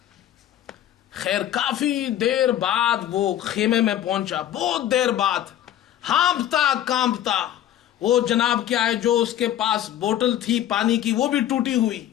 خیر کافی دیر بعد وہ خیمے میں پہنچا، بہت دیر بعد، ہانپتا کانپتا۔ وہ جناب کیا ہے جو اس کے پاس بوتل تھی پانی کی وہ بھی ٹوٹی ہوئی۔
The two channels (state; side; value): quieter; right; 11.7 dB